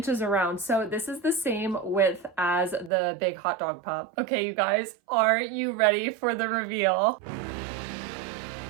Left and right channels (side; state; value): left; drops out; at 2.9 s